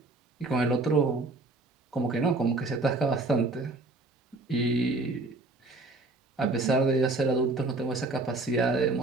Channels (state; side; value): quieter; left; 3.1 dB